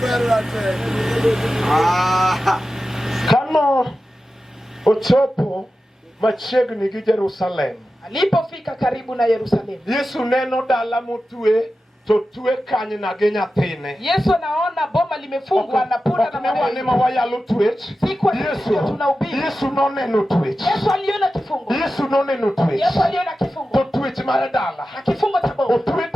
berra te. Kano ochopo machiegni gi Jerusalem. Alipofika karibu na Yerusalemu. Yesu neno dala motwe to twe kanyna gi nyathine. Yesu anaona boma limefungwa na punda na mawa. Ni mawayalo twech. Yesu noneno twech. Yesu aliona kifungo. Yesu noneno twech. Yesu aliona kifungo. To twech mar dala. Na kifungo cha boma. Otwe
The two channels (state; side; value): normal; both; correlation 0.93